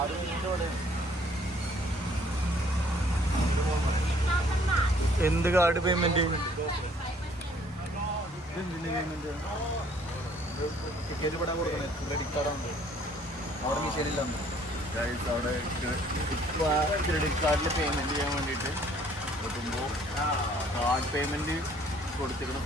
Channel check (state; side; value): normal; both; correlation 0.60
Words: എന്ത് കാർഡ് പേയ്മെന്റ്? പേയ്മെന്റ് ടിക്കറ്റ് ഇവിടെ കൊടുക്കുന്നത് ക്രെഡിറ്റ് കാർഡാണ്. അവിടെ മിഷനില്ല. അവിടെ ക്രെഡിറ്റ് കാർഡിൽ പേയ്മെന്റ് ചെയ്യാൻ വേണ്ടിയിട്ട് നോക്കുമ്പോൾ കാർഡ് പേയ്മെന്റ് കൊടുത്തിരിക്കുന്ന